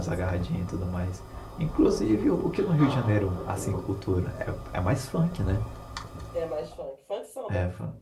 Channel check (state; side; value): identical; both; correlation 1.00